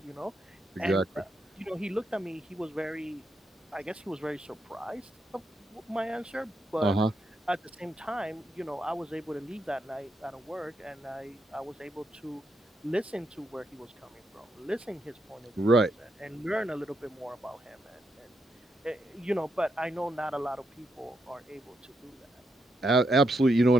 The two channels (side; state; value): both; normal; correlation 0.80